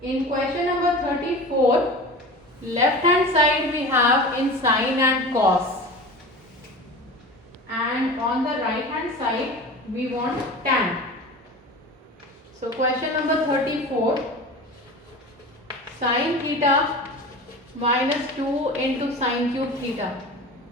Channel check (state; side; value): normal; both; correlation 0.33